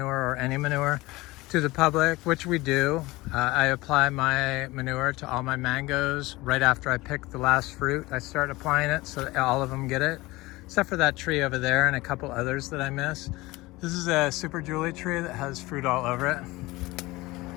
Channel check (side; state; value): right; quieter; 20.7 dB